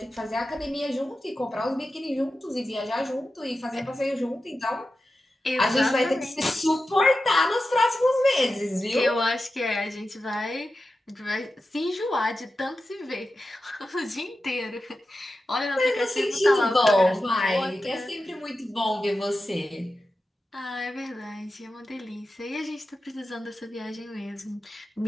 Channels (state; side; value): normal; both; correlation 0.92